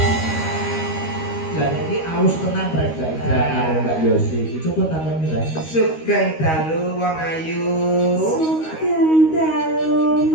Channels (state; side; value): late; right; 13 ms